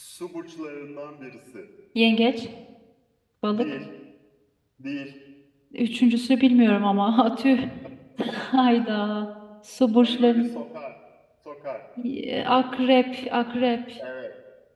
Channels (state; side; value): identical; both; correlation 1.00